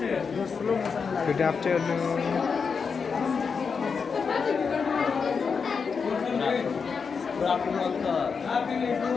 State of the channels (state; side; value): quieter; right; 5.6 dB